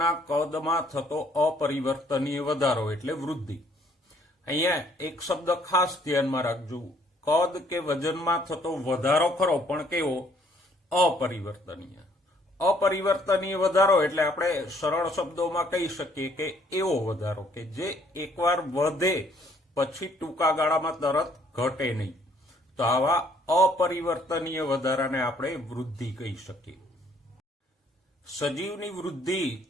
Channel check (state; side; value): normal; both; correlation 0.64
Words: કદમાં થતો અપરિવર્તનીય વધારો એટલે વૃદ્ધિ. અહીંયા એક શબ્દ ખાસ ધ્યાનમાં રાખજો, કદ કે વજનમાં થતો વધારો ખરો, પણ કેવો? અપરિવર્તનીય. અપરિવર્તનીય વધારો એટલે આપણે સરળ શબ્દોમાં કહી શકીએ કે એવો વધારો કે જે એકવાર વધે પછી ટૂંકા ગાળામાં તરત ઘટે નહીં. તો આવા અપરિવર્તનીય વધારાને આપણે વૃદ્ધિ કહી શકીએ. સજીવની વૃદ્ધિ